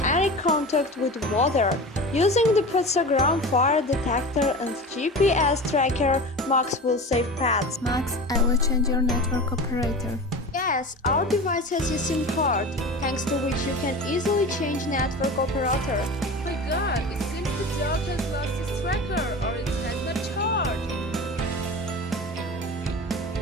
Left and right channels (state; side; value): normal; both; correlation 0.32